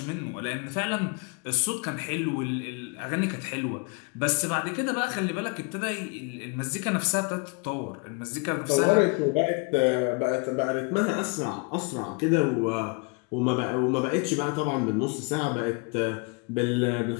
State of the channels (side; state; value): right; quieter; 32.8 dB